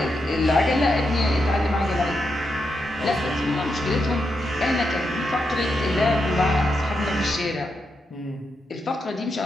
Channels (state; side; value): normal; both; correlation 0.84